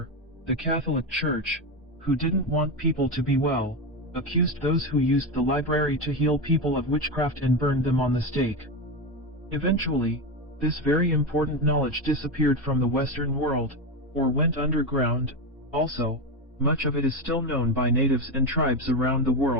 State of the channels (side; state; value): both; normal; correlation 0.15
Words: the Catholic Church, who didn't want people to be well, accused those who used the library to heal people of witchcraft and burned them on the stake. Eventually, this very important knowledge disappeared from the Western world, or went underground. Also, much of it is still known by natives and tribes around the